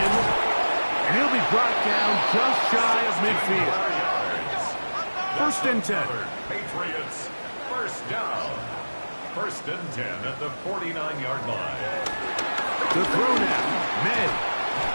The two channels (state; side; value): inverted; both; correlation -1.00